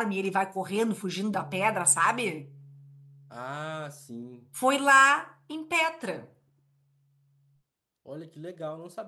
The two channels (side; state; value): both; identical; correlation 1.00